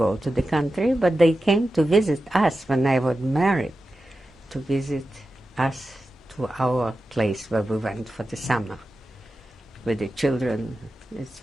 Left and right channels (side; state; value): both; normal; correlation 0.92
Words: to the country, but they came to visit us when I was married, to visit us to our place where we went for the summer with the children. It